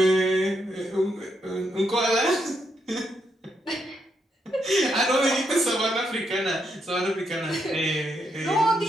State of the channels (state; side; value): normal; both; correlation 0.79